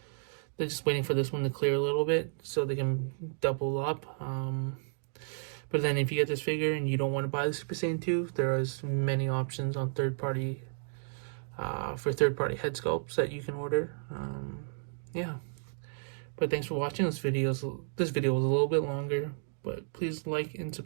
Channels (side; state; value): left; silent; digital silence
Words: They're just waiting for this one to clear a little bit so they can double up. But then if you get this figure and you don't want to buy the Super Saiyan 2, there is many options on third-party head sculpts that you can order. Yeah. But thanks for watching this video. This video was a little bit longer, but please like and